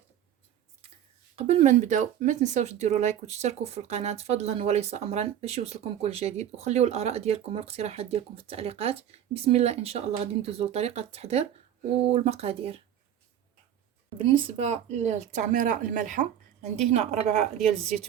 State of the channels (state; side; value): quieter; left; 10.3 dB